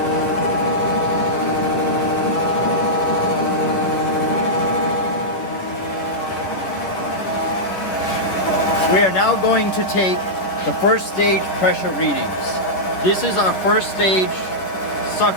We are now going to take the first stage pressure readings. This is our first stage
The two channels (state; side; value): late; right; 9.9 ms